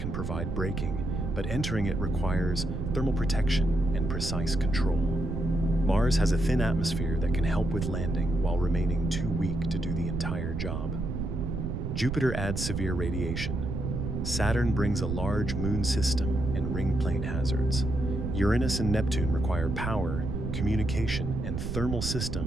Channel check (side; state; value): right; noise; rumble, 3 dB below the sound